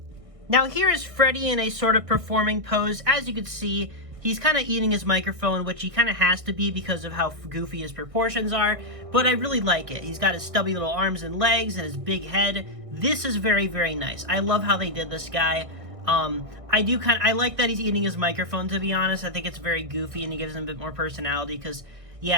Now here is Freddy in a sort of performing pose. As you can see, he's kind of eating his microphone, which he kind of has to be because of how goofy his proportions are, but I really like it. He's got his stubby little arms and legs and his big head. This is very, very nice. I love how they did this guy. I like that he's eating his microphone, to be honest. I think it's very goofy and it gives him a bit more personality because,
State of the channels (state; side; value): late; left; 1.6 ms